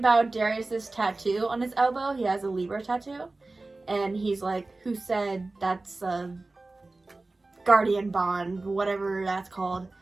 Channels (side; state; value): left; quieter; 3.2 dB